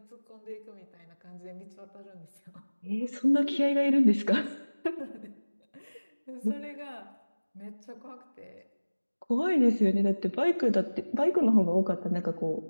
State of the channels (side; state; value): both; inverted; correlation -1.00